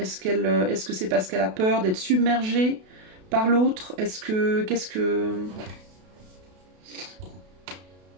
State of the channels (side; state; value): left; late; 32 ms